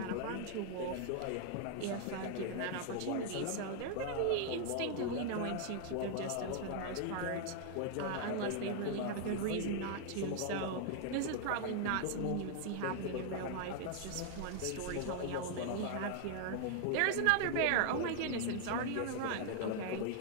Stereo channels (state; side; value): different; both; correlation 0.00